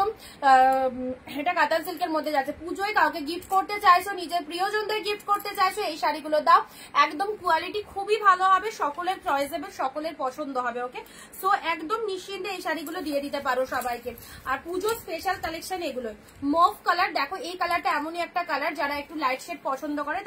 এটা কাতান সিল্কের মধ্যে যাচ্ছে। পুজোয় কাউকে গিফট করতে চাইছো, নিজের প্রিয়জনদের গিফট করতে চাইছো, এই শাড়িগুলো দাও। একদম কোয়ালিটি খুবই ভালো হবে, সকলের চয়েসেবল, সকলের পছন্দ হবে। ওকে, সো একদম নিশ্চিন্তে এই শাড়িগুলো দিয়ে দিতে পারো সবাইকে। আর পুজো স্পেশাল কালেকশন এগুলো। মফ কালার দেখো, এই কালারটা এমনই একটা কালার, যারা একটু লাইট শেড পছন্দ করে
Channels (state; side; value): identical; both; correlation 1.00